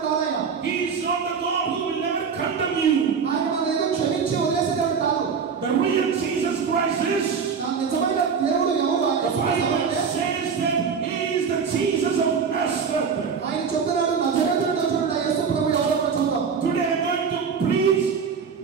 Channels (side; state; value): left; quieter; 6.1 dB